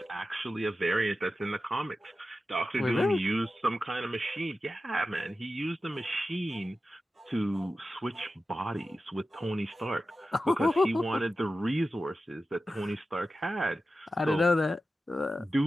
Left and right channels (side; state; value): both; normal; correlation 0.93